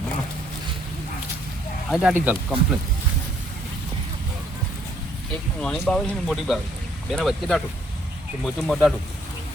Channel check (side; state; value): both; normal; correlation 0.66